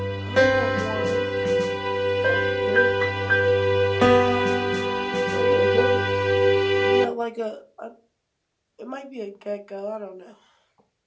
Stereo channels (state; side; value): identical; both; correlation 1.00